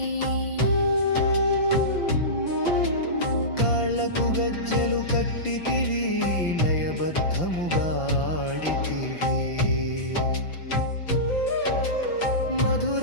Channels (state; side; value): late; right; 5.8 ms